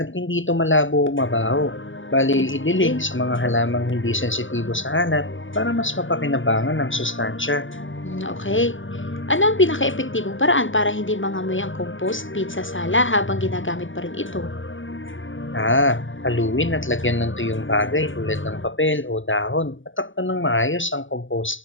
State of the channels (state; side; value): late; right; 0.57 ms